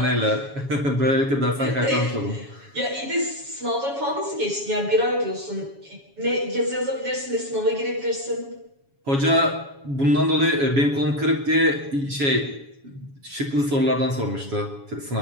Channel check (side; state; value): left; late; 7.2 ms